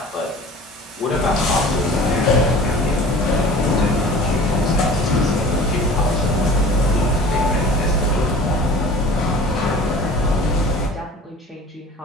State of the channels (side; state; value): both; normal; correlation 0.43